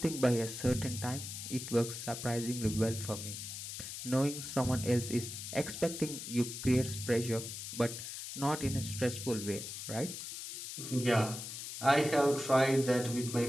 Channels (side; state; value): left; noise; hiss, 8 dB below the sound